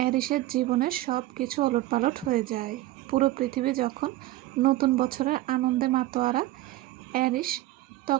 এরিসের জীবনের সব কিছু ওলটপালট হয়ে যায়। পুরো পৃথিবী যখন নতুন বছরের আনন্দে মাতোয়ারা, এরিস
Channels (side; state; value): left; quieter; 16.4 dB